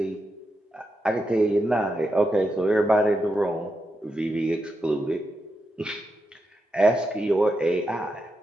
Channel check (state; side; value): normal; both; correlation 0.86